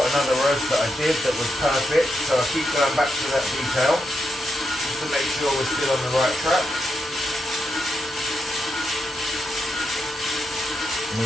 another roast that I did that was perfect, so I keep going back to that detail just to make sure we're still on the right track.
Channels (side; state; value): both; normal; correlation 0.84